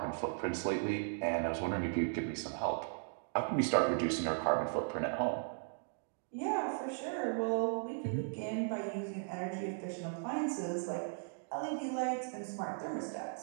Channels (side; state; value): left; silent; digital silence